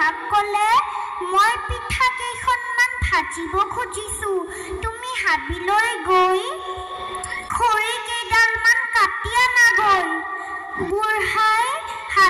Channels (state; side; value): identical; both; correlation 1.00